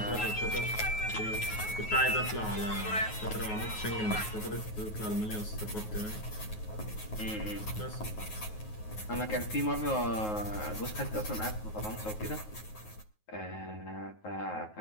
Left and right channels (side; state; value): right; late; 9.4 ms